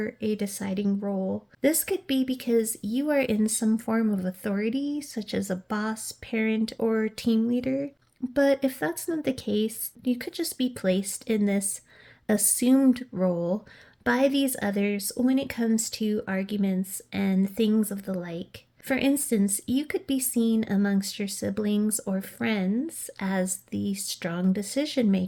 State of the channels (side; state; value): both; identical; correlation 1.00